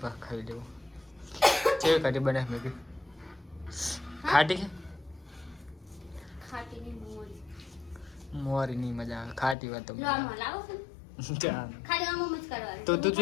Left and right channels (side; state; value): right; drops out; at 9.6 s